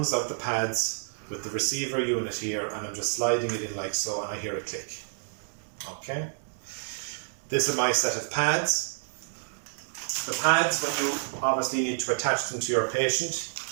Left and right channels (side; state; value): left; silent; 59 dB below the other